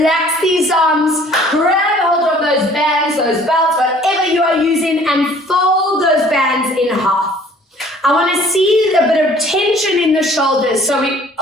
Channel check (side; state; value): both; normal; correlation 0.54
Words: these arms, grab hold of those bands, those belts, whatever you are using, and fold those bands in half. I want to see a bit of tension in the shoulders, so we